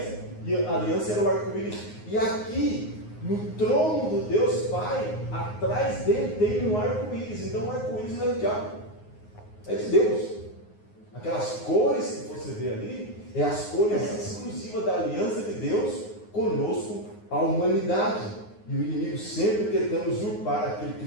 e a aliança era o arco-íris. E aqui, no trono do Deus Pai, atrás dele tem um arco-íris. Então o arco-íris não é do diabo, é de Deus. Aquelas cores que você vê ali, é as cores exclusivas da aliança de Deus conosco, a humanidade. E o inimigo sempre tentando usurpar aquilo que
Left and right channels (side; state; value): right; late; 9.6 ms